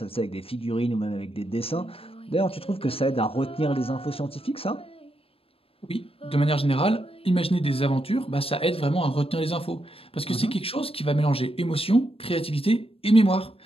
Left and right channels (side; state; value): right; late; 0.28 ms